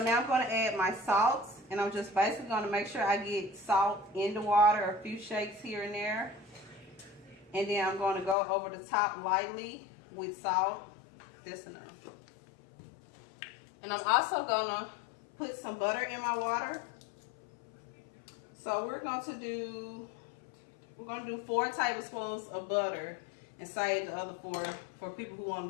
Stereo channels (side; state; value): right; drops out; at 8.3 s